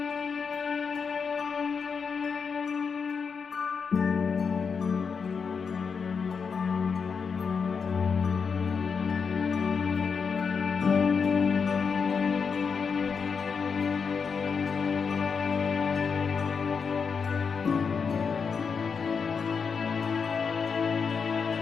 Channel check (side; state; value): right; quieter; 5.8 dB